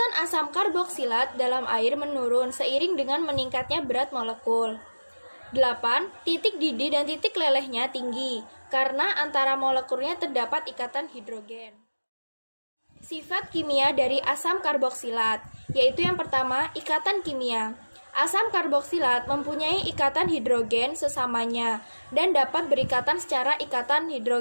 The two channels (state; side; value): inverted; both; correlation -1.00